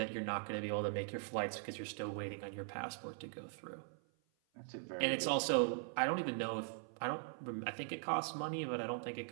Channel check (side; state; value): left; silent; 50 dB below the other